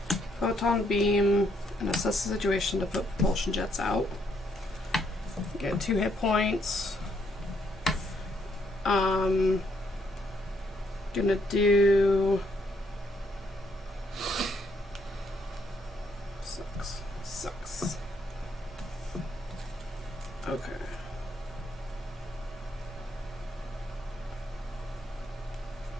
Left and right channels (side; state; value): both; normal; correlation 0.72